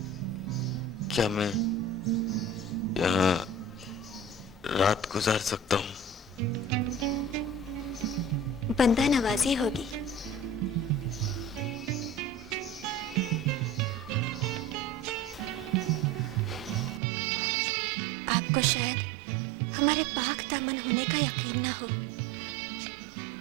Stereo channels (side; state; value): left; drops out; at 17.0 s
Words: क्या मैं यहाँ रात गुजार सकता हूँ? बंदा नवाजी होगी। आपको शायद हमारे पाक दामन होने का यकीन ना हो,